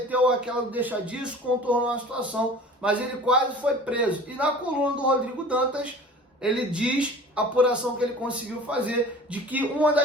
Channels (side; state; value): both; normal; correlation 0.43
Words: aquela deixa disso, contornou a situação, mas ele quase foi preso. E na coluna do Rodrigo Dantas, ele diz, a apuração que ele conseguiu fazer, de que uma